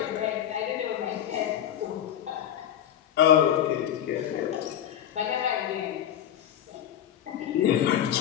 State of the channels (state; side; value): quieter; right; 10.6 dB